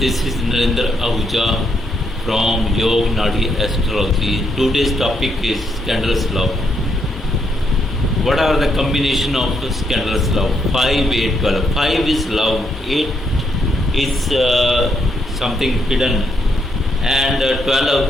is Narendra Ahuja from Yog Nadi Astrology. Today's topic is scandalous love. What are the combination of scandalous love? 5, 8, 12. 5 is love, 8 is something hidden, and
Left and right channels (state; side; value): normal; both; correlation 0.77